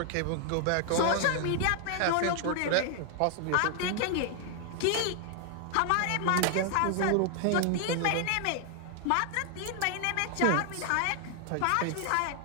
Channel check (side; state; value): both; different; correlation 0.00